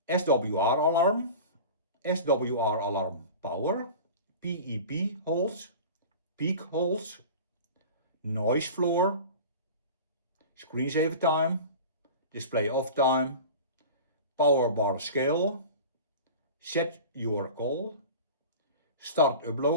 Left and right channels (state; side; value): inverted; both; correlation -0.36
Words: SWR alarm, SWR alarm power, PEP holes, peak holes, noise floor, screensaver time, display off time, power bar scale, set your call, start up